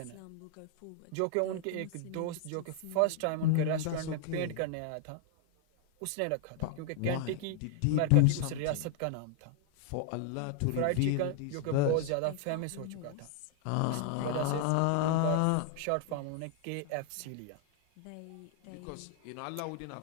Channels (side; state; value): both; different; correlation 0.00